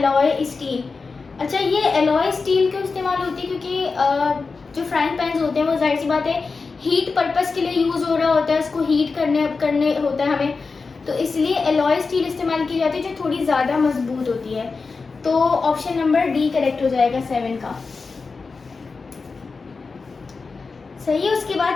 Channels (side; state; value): right; quieter; 4.4 dB